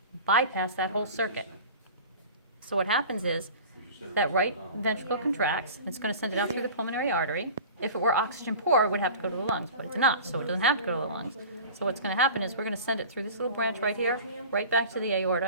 bypass that whole circuit. So what happens is that right ventricle contracts, and it's going to send it out through the pulmonary artery. If it were oxygen poor, it would have to go to the lungs, but it's not, so it doesn't have to go to the lungs. So what's going to happen is we're going to send it through this little branch right here, right back to the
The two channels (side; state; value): both; inverted; correlation -0.39